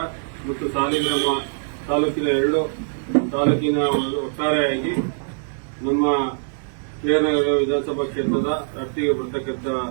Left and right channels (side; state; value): left; silent; digital silence